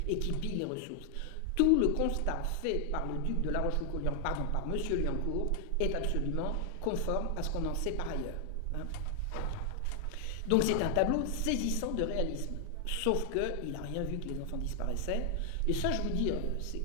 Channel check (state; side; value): different; both; correlation 0.00